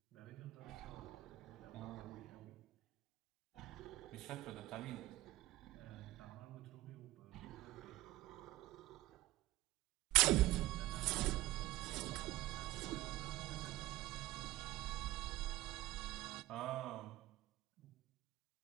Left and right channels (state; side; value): quieter; left; 17.1 dB